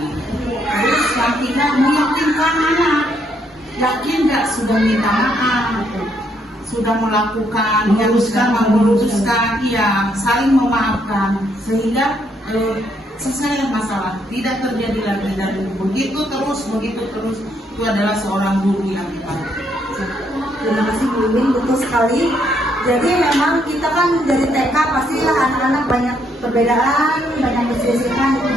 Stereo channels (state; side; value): normal; both; correlation 0.73